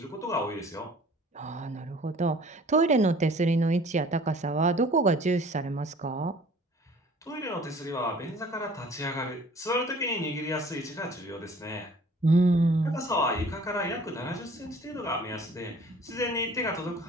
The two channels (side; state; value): both; normal; correlation 0.51